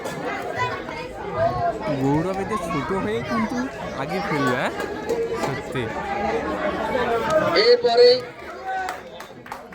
গৌরব এতে ছোট হয়ে কিন্তু আগে ফেলবে, সত্যি। এরপরে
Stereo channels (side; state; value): both; identical; correlation 1.00